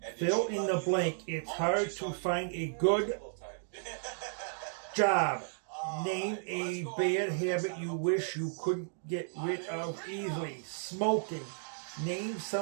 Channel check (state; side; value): silent; left; digital silence